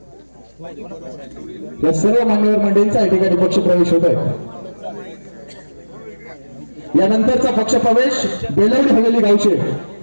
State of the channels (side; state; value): both; inverted; correlation -1.00